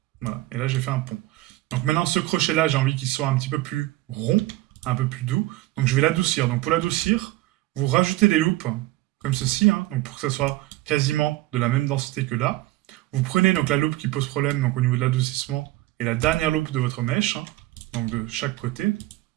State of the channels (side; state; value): left; quieter; 17.7 dB